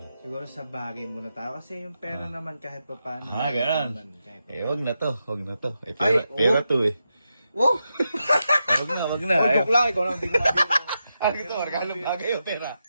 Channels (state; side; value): inverted; both; correlation -0.87